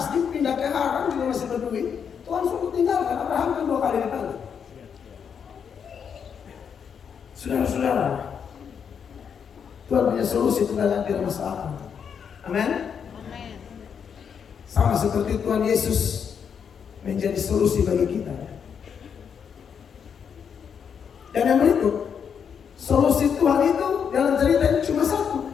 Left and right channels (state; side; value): quieter; right; 7.2 dB